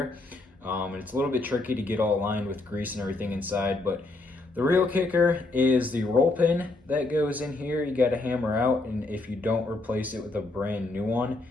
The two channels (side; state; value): right; quieter; 3.1 dB